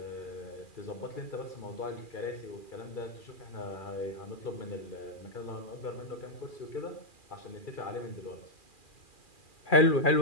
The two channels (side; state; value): right; late; 2.4 ms